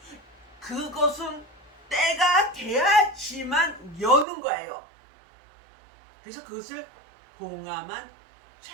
그것은 때가 돼야지만 여는 거예요. 그래서 그것을 봉함한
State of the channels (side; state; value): left; drops out; at 4.2 s